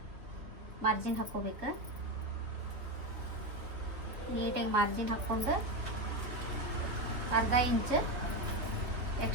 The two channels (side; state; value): left; late; 3.2 ms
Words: ಮಾರ್ಜಿನ್ ಹಾಕ್ಕೋಬೇಕು. ನೀಟಾಗಿ ಮಾರ್ಜಿನ್ ಹಾಕ್ಕೊಂಡು ಅರ್ಧ ಇಂಚ್